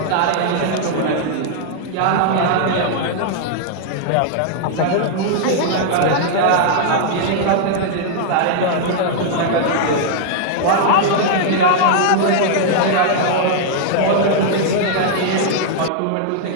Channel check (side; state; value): both; different; correlation -0.01